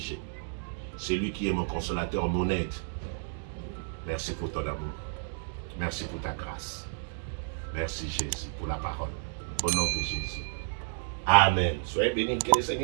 C'est lui qui est mon consolateur, mon aide. Merci pour ton amour. Merci pour ta grâce. Merci Jésus pour la parole. Au nom de Jésus. Amen. Soyez bénis, que le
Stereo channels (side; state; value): left; silent; digital silence